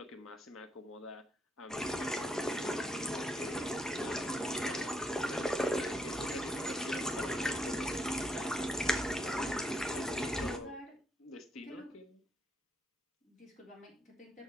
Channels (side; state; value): both; normal; correlation 0.75